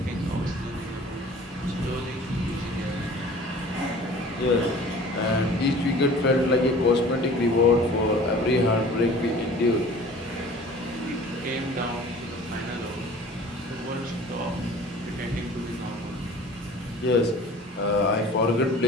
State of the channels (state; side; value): normal; both; correlation 0.45